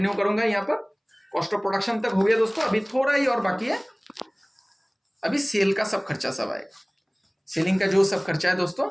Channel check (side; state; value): both; identical; correlation 1.00